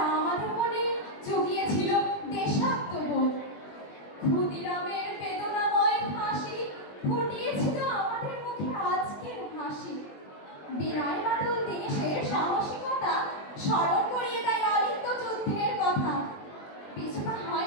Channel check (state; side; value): late; right; 20 ms